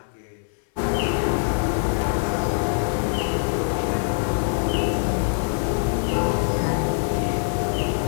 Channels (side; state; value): right; silent; 59 dB below the other